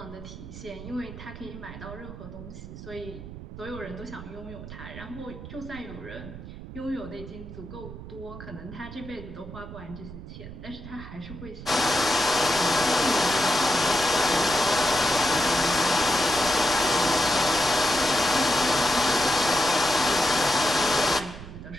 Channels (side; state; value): right; noise; rumble, 12 dB below the sound